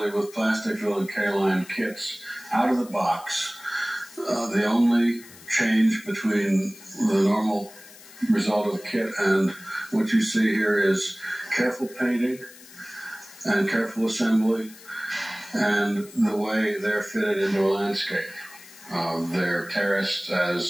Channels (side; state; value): left; noise; hiss, 20 dB below the sound